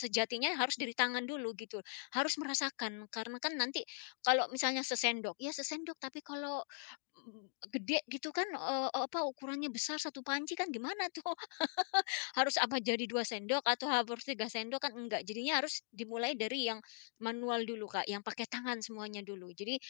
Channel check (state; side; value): silent; right; digital silence